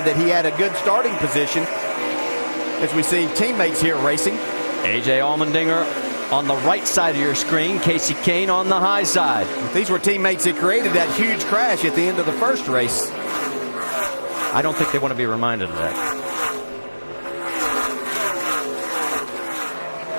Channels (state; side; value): inverted; both; correlation -1.00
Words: that he had a good starting position as we see teammates here racing. A.J. Allmendinger on the right side of your screen, Casey Kane on the high side. These were teammates that created that huge crash at the end of the first race. I don't think they want to be reminded of that.